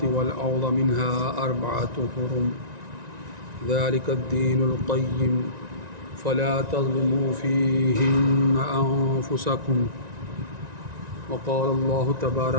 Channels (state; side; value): late; left; 1.9 ms